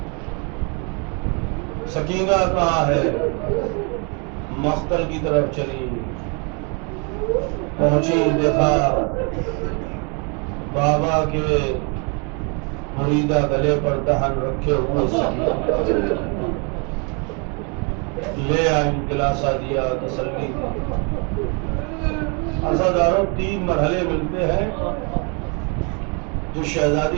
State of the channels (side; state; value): left; quieter; 34.8 dB